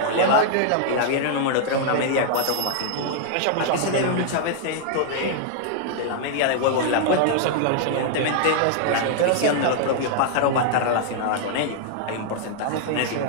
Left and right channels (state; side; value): different; both; correlation -0.01